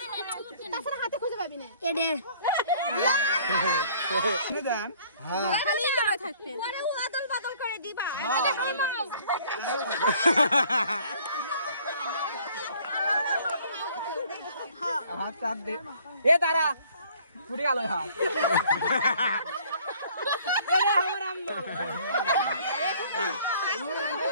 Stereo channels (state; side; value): inverted; both; correlation -0.57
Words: তারা ফুটে গেল